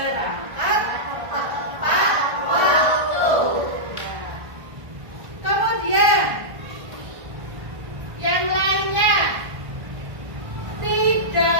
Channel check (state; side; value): late; left; 1.5 ms